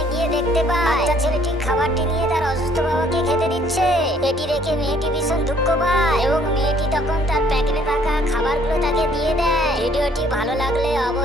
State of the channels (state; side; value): normal; both; correlation 0.61